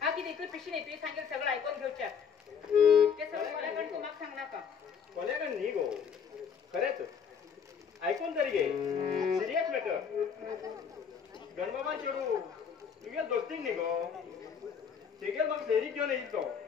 किती इकडे पिशी नाही तुझे सांगेल सगळं ऐकून घेऊच्या ते सगळं कोल्याकडे तू मग सांगणार का कोल्याकडे नाही गो खरेच ऐकून तरी घे सिरियस मॅटर गणबाबा चेडू तुझ्या दोस्तीक नाही गो तेगेल मग फेरी घेऊन येईल तो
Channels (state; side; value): quieter; right; 6.9 dB